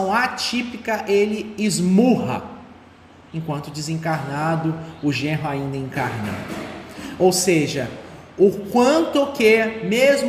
atípica ele esmurra, enquanto desencarnado, o genro ainda encarnado. Ou seja, o quanto que,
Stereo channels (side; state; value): both; identical; correlation 1.00